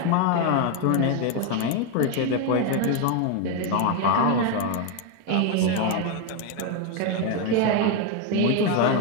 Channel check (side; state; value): both; different; correlation 0.01